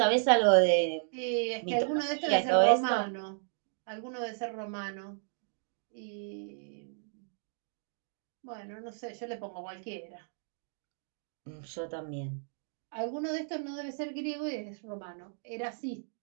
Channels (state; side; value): silent; left; digital silence